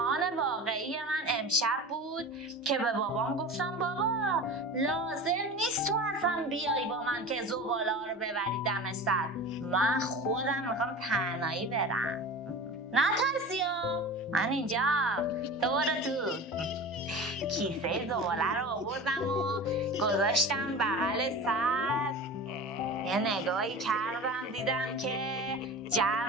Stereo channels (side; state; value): both; normal; correlation 0.33